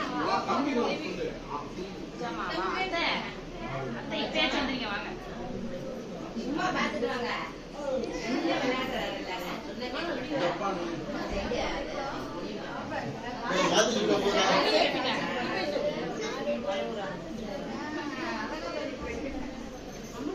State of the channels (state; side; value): identical; both; correlation 1.00